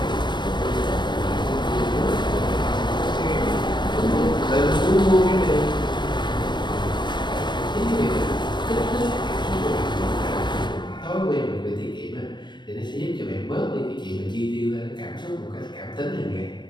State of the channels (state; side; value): late; right; 0.22 ms